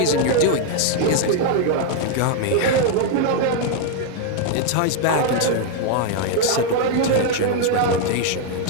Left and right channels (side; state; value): both; different; correlation 0.00